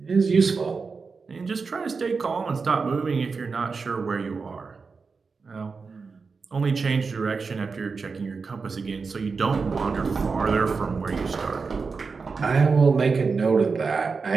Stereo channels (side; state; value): left; quieter; 4.8 dB